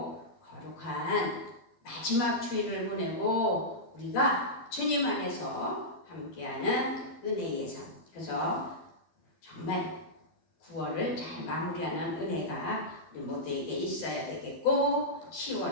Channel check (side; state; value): right; late; 12 ms